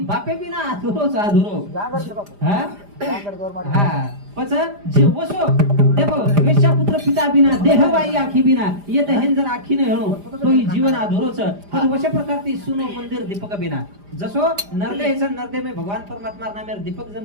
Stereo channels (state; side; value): late; left; 5.0 ms